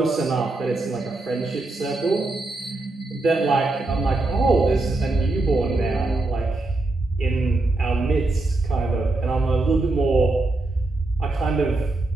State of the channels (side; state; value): left; quieter; 3.0 dB